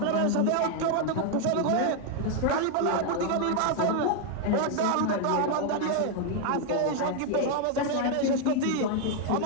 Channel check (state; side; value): different; both; correlation 0.01